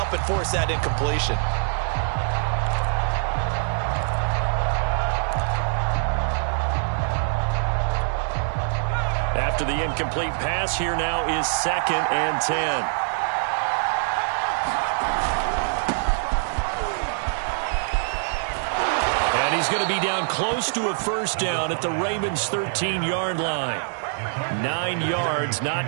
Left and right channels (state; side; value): silent; left; 62 dB below the other